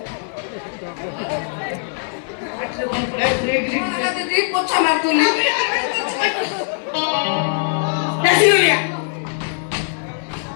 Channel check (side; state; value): right; silent; digital silence